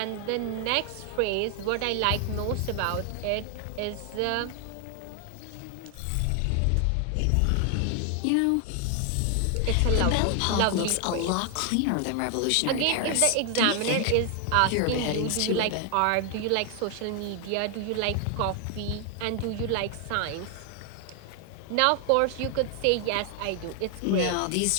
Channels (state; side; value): different; both; correlation 0.00